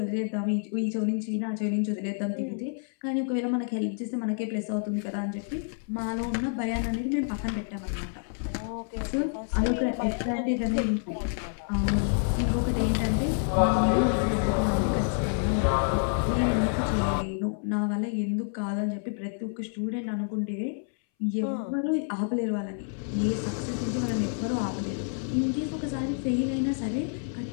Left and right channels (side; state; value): right; silent; 59 dB below the other